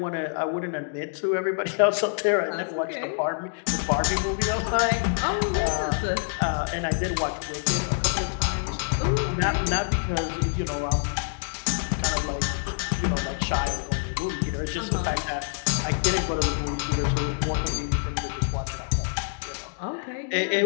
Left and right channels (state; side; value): silent; right; digital silence